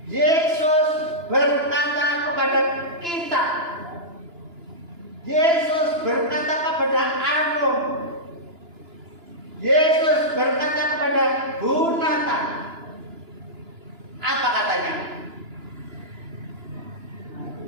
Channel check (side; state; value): left; late; 2.9 ms